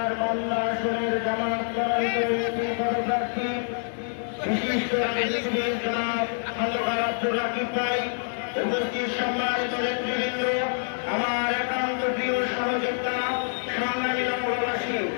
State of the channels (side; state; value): right; silent; 61 dB below the other